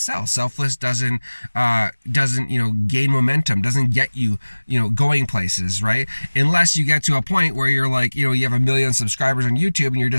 Selfless doesn't gain momentum, doesn't get you going places, right? Unless you get to a point where you're like, you have 1 million subscribers on YouTube and you're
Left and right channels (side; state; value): both; inverted; correlation -1.00